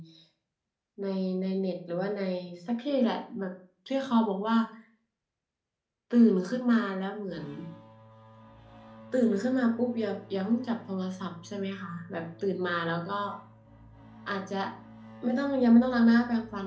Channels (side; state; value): both; identical; correlation 1.00